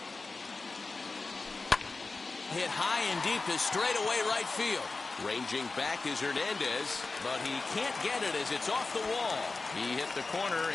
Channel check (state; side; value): quieter; right; 3.8 dB